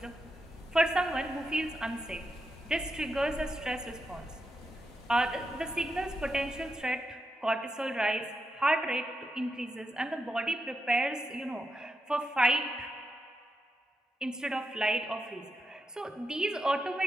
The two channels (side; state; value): both; normal; correlation 0.86